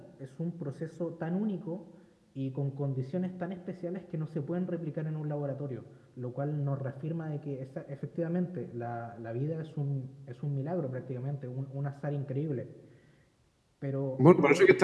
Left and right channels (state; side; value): identical; both; correlation 1.00